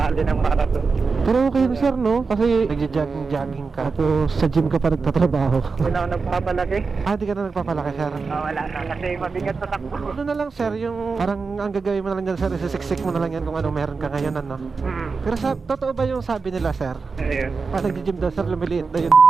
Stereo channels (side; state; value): left; quieter; 4.6 dB